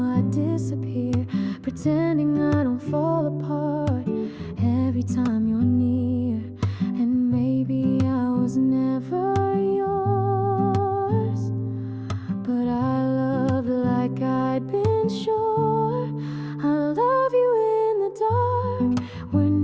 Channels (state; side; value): identical; both; correlation 1.00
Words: I disappear, pretending I don't fall apart every time you're near. And maybe I was never yours, but I loved like I'd been sure. I love you in the dark, where